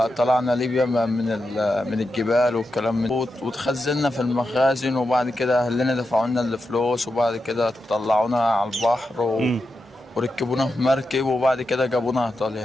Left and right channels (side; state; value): both; normal; correlation 0.88